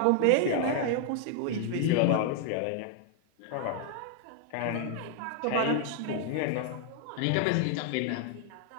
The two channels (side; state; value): both; different; correlation 0.00